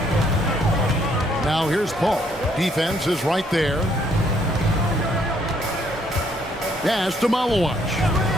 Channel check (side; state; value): both; normal; correlation 0.68